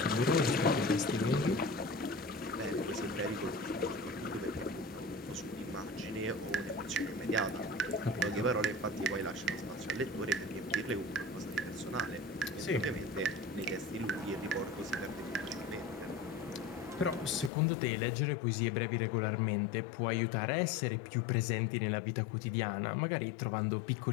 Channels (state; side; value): drops out; right; at 17.5 s